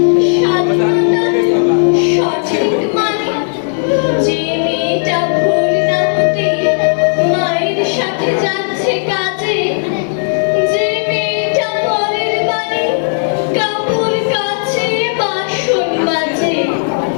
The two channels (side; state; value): right; silent; digital silence